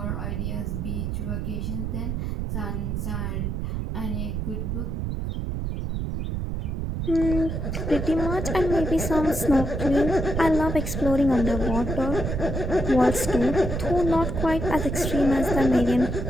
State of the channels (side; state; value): right; noise; rumble, 2 dB below the sound